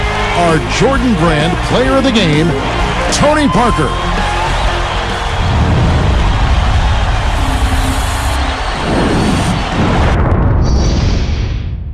our Jordan Brand Player of the Game, Tony Parker.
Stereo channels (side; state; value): both; identical; correlation 1.00